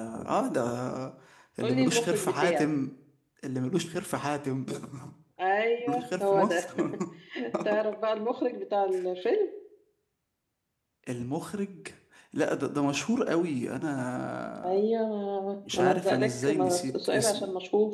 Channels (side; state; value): both; identical; correlation 1.00